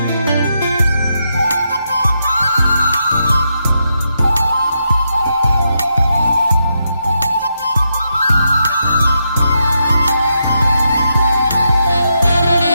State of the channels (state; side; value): inverted; both; correlation -0.83